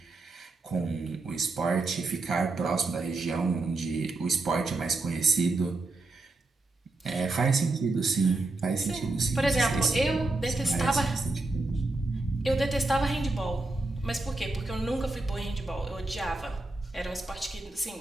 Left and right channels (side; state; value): left; quieter; 3.1 dB